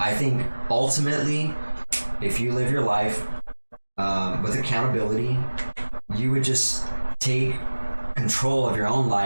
think ultimately if you live your life with accountability, you would just take control of your own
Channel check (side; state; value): both; inverted; correlation -1.00